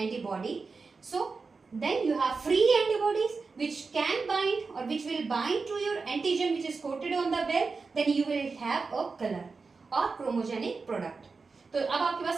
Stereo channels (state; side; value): quieter; left; 4.5 dB